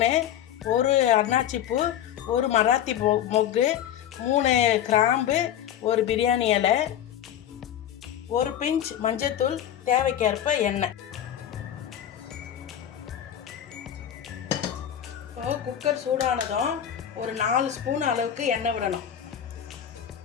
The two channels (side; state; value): right; quieter; 10.4 dB